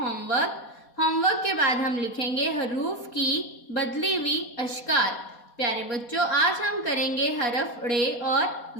होमवर्क के बाद हम लिखेंगे हरूफ की बदली हुई अशकाल। प्यारे बच्चों, आज हम करेंगे हरफ रे और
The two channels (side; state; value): right; late; 4.2 ms